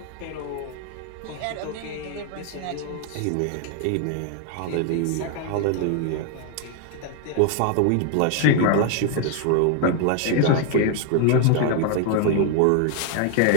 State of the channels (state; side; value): different; both; correlation 0.01